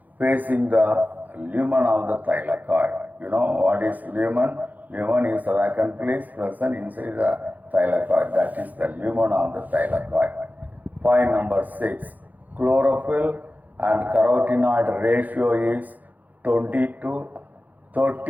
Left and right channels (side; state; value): left; late; 0.082 ms